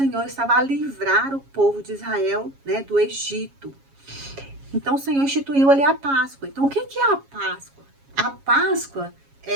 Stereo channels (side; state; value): left; late; 7.3 ms